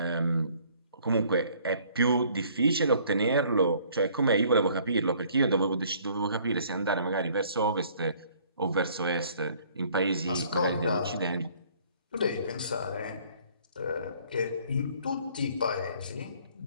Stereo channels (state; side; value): inverted; both; correlation -0.59